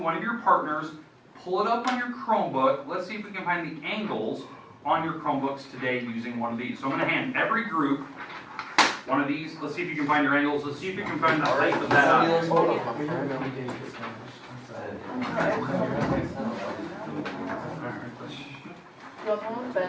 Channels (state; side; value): identical; both; correlation 1.00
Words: of your partners, pull it up on your Chromebook. Let's see if we can find the angles on your Chromebooks today using one of these. So I'm going to hand every group one of these. Let's see if you can find your angles. Let's see if you can find the height of that object. You guys want